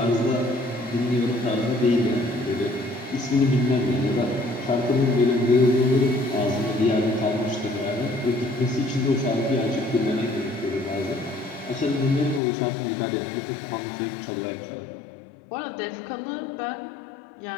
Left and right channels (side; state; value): right; drops out; at 12.4 s